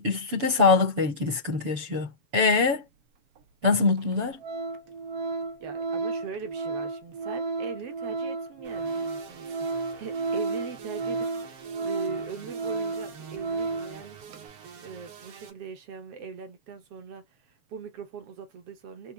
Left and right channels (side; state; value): left; late; 6.8 ms